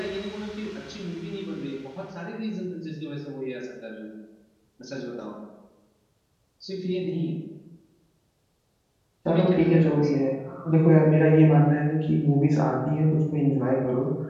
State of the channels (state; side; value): identical; both; correlation 1.00